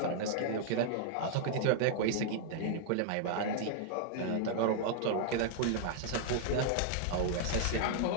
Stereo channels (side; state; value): both; different; correlation 0.00